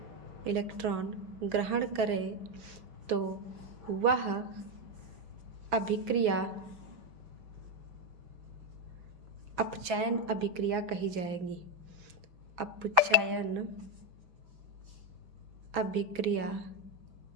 इलेक्ट्रॉन ग्रहण करे, तो वह अभिक्रिया अपचयन अभिक्रिया कही जाएगी। अपचयन अभिक्रिया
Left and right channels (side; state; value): left; late; 5.9 ms